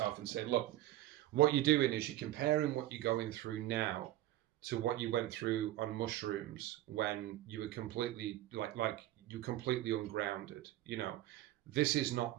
and say, look, what you're doing is you're comparing what you're going through now to what you went through on mushrooms when you were completely like you completely ungrounded. This is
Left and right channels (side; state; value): left; quieter; 14.8 dB